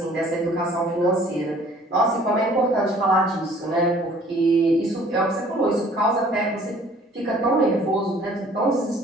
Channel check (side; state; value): both; normal; correlation 0.54